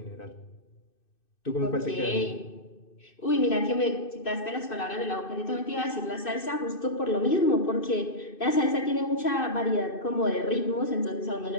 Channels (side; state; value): right; late; 2.6 ms